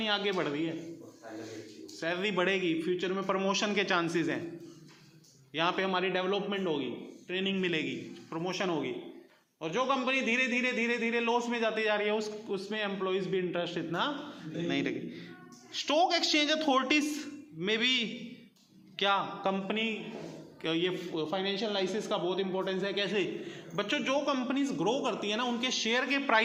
आगे बढ़ रही है, सैलरी बढ़ेगी, फ्यूचर में प्रमोशन के चांसेस हैं, यहाँ पे हमारी डेवलपमेंट होगी, ट्रेनिंग मिलेगी, प्रमोशन होगी। और जो कंपनी धीरे धीरे धीरे धीरे लॉस में जाती जा रही है उसमें एम्प्लॉइज भी इंटरेस्ट इतना नहीं लगे। स्टॉक एक्सचेंज अथॉरिटीज में भी क्या कंपनी, ये फाइनेंशियल एनालिसिस का बहुत इंपॉर्टेंस है। कैसे बच्चों, जो कंपनीज ग्रो करती है ना उनके शेयर के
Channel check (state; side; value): identical; both; correlation 1.00